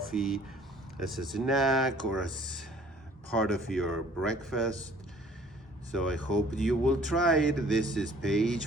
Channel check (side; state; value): both; normal; correlation 0.54